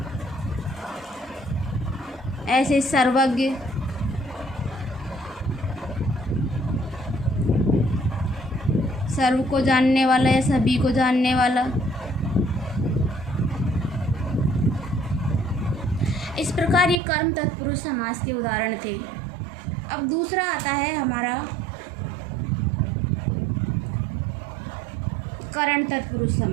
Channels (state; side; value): drops out; left; at 17.0 s